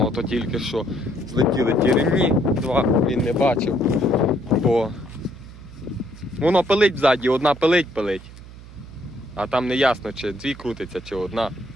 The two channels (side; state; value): right; noise; hum, 17 dB below the sound